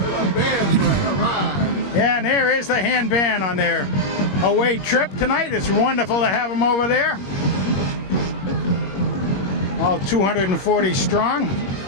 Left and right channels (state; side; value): late; right; 21 ms